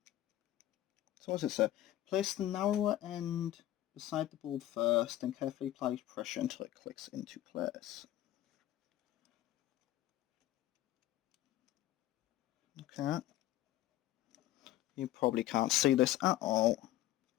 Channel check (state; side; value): quieter; right; 14.2 dB